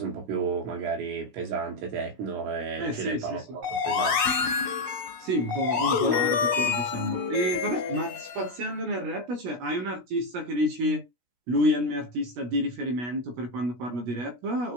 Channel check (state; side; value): late; left; 17 ms